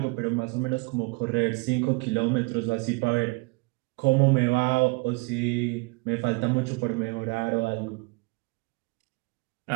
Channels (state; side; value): quieter; left; 28.2 dB